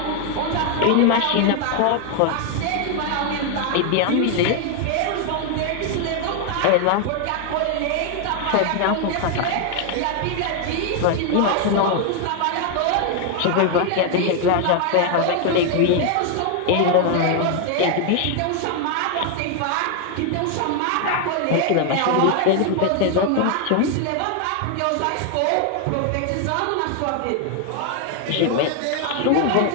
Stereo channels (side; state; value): both; different; correlation 0.01